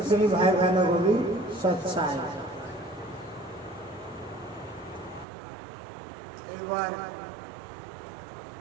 भाई बहनों को भी सत साहिब। एक बार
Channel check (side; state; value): left; drops out; at 5.2 s